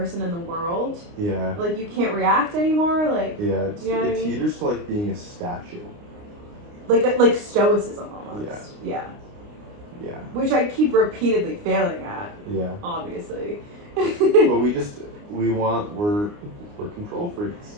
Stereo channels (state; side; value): late; left; 29 ms